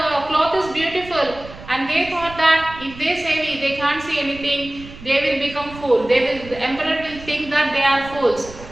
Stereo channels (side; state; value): right; noise; rumble, 16 dB below the sound